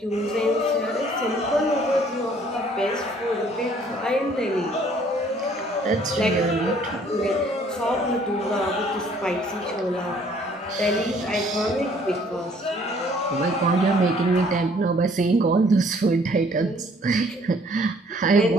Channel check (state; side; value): normal; both; correlation 0.59